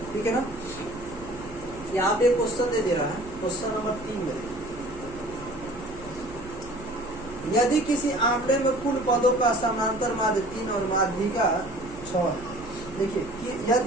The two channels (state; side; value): noise; right; hum, 18 dB below the sound